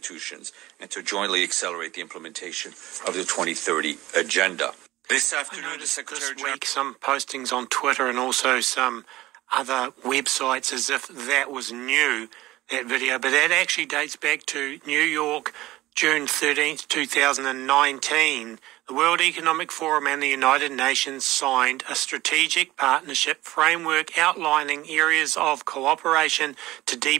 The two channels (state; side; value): quieter; left; 17.2 dB